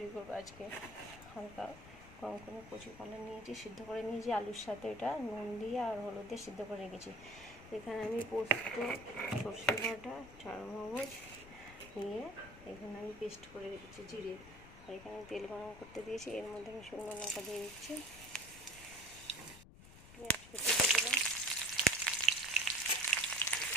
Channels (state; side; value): noise; left; rumble, 18 dB below the sound